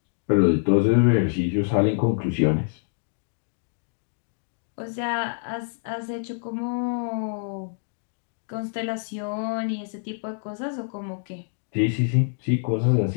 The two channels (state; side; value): silent; right; digital silence